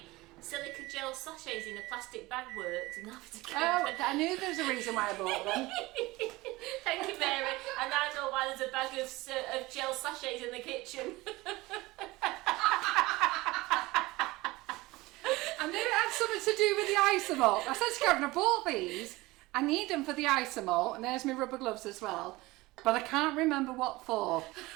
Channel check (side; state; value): left; quieter; 20.5 dB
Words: silica gel sachets in a plastic bag works. And I knew there was a reason why I bought them. Thank you, Mary. And I know why there's a bag of gel sachets in the kitchen. I knew it had something to do with the Isomalt. I said to Karen, I bought these. I need them for the Isomalt, and there's my rubber gloves as well. But I can't remember what for.